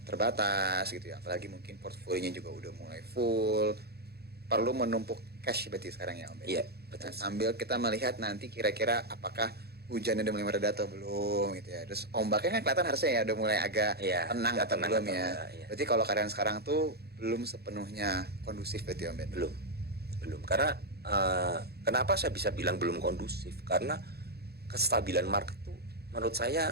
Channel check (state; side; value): late; left; 0.46 ms